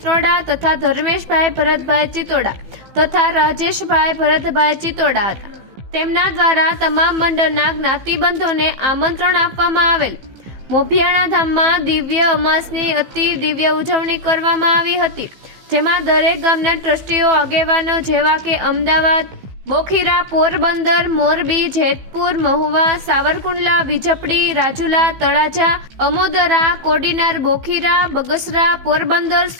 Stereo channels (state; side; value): late; left; 15 ms